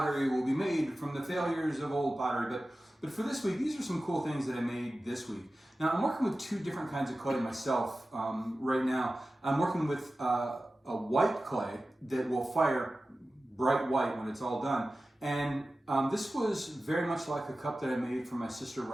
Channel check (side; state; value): both; normal; correlation 0.95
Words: will be made from the failures of old pottery. But for this week, these are some cool things that I made this week. Now, I'm working with two different kinds of clay myself right now. I'm working with a white clay that will fire bright white when it's all done. And this was very much like a cup that I made for my sister